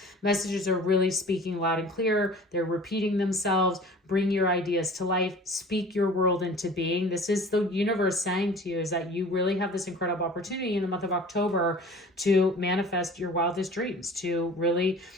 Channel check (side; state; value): both; normal; correlation 0.44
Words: messages are really speaking loud and clear. They're repeating themselves. Bring your ideas to life. Speak your world into being. This is the universe saying to you is that you really have this incredible opportunity in the month of October to manifest your wildest dreams, to really